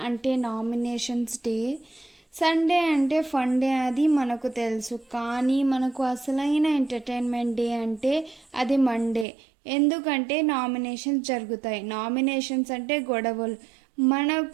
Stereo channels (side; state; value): left; drops out; at 9.2 s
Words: అంటే nominations day. Sunday అంటే fun day అది మనకు తెలుసు, కానీ మనకు అసలైన ఎంటర్టైన్మెంట్ డే అంటే అది మండే. ఎందుకంటే నామినేషన్స్ జరుగుతాయి. నామినేషన్స్ అంటే గొడవలు.